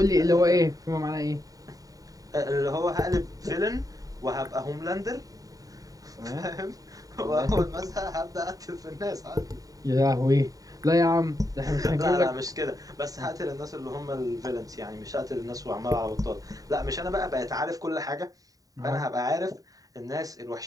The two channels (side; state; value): left; late; 0.18 ms